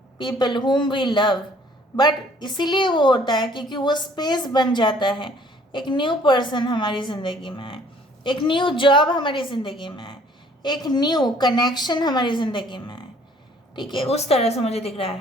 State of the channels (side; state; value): both; normal; correlation 0.58